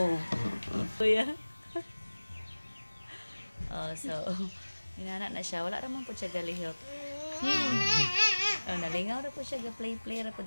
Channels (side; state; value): both; inverted; correlation -1.00